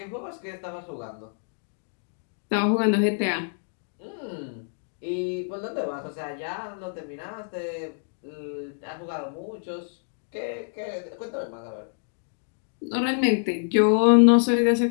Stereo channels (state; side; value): silent; right; digital silence